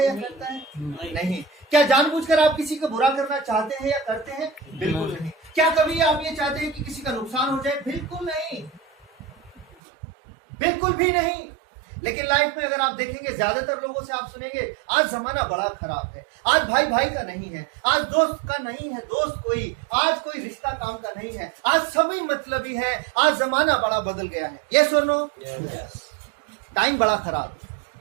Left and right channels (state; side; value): drops out; left; at 9.7 s